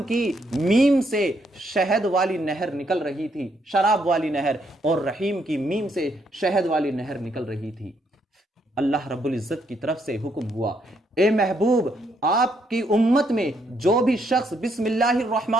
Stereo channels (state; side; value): normal; both; correlation 0.74